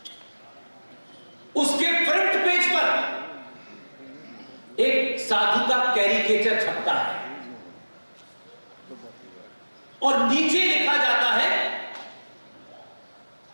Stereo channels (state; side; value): inverted; both; correlation -1.00